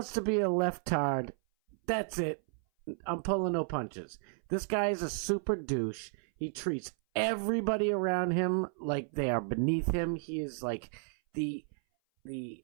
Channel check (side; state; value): left; silent; 56 dB below the other